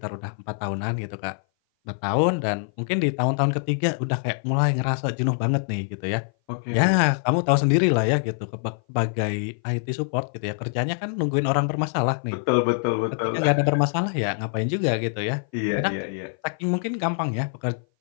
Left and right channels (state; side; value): silent; right; 58 dB below the other